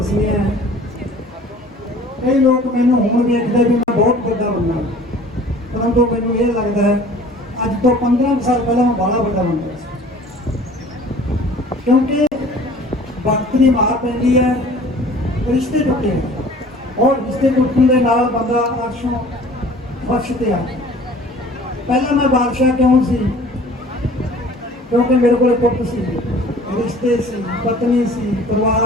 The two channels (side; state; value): both; normal; correlation 0.48